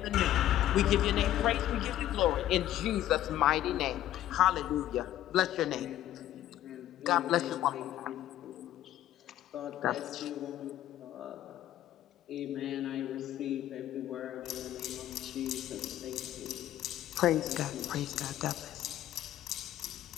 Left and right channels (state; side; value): quieter; right; 12.8 dB